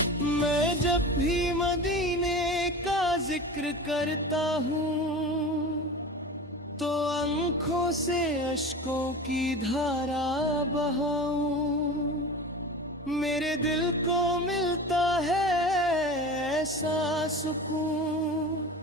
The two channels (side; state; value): both; normal; correlation 0.33